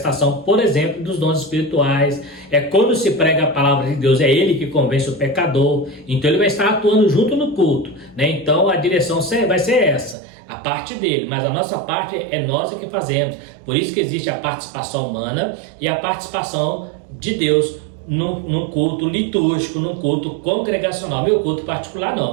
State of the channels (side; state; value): left; drops out; at 10.2 s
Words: por exemplo, dos dons espirituais. É quando se prega a palavra de Deus, é ele que convence o pecador. Então ele vai estar atuando junto no culto, né? Então a direção vai ser essa, a parte dele, mas a nossa parte é nós que fazemos. Por isso que existe a participação humana e a participação de Deus num culto litúrgico, num culto congregacional. Meu culto particular